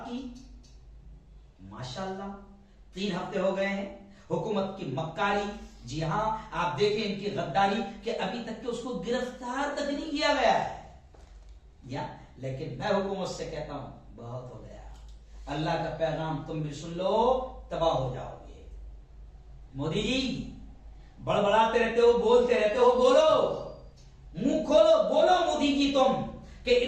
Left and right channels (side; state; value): both; identical; correlation 1.00